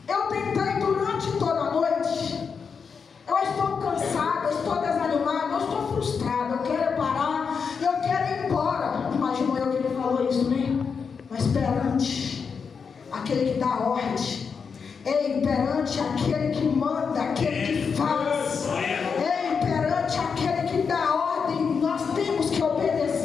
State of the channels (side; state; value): right; quieter; 5.9 dB